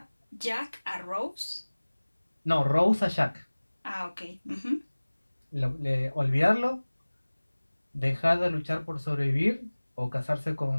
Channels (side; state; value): both; inverted; correlation -1.00